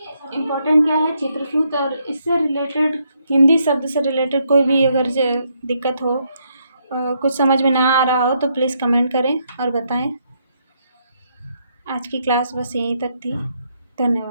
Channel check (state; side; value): inverted; both; correlation -0.76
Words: इम्पोर्टेंट क्या है? चित्रसूत्र। और इससे रिलेटेड हिंदी शब्द से रिलेटेड कोई भी अगर दिक्कत हो, कुछ समझ में ना आ रहा हो तो प्लीज़ कमेंट करें और बताएं। आज की क्लास बस यहीं तक थी।